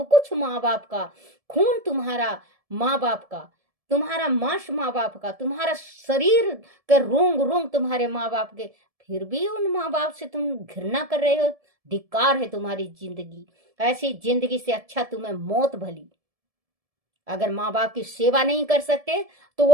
कुछ माँ बाप का। खून तुम्हारा माँ बाप का, तुम्हारा मांस माँ बाप का, तुम्हारा शरीर के रोंग रोंग तुम्हारे माँ बाप के, फिर भी उन माँ बाप से तुम घृणा कर रहे हो। धिक्कार है तुम्हारी जिंदगी। ऐसी जिंदगी से अच्छा तुम्हें मौत भली। अगर माँ बाप की सेवा नहीं कर सकते तो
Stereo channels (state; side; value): late; left; 1.7 ms